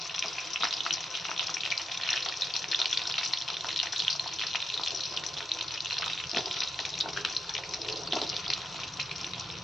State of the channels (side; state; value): both; normal; correlation 0.83